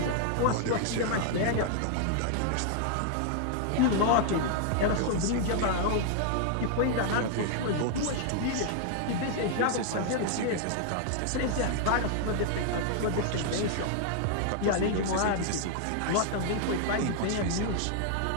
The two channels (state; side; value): different; both; correlation -0.01